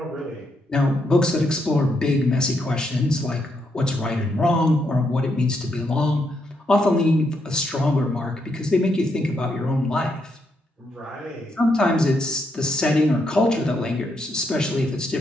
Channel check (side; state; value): both; normal; correlation 0.78